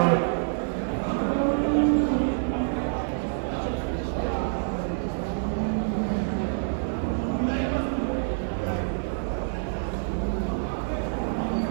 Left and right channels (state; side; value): silent; left; 60 dB below the other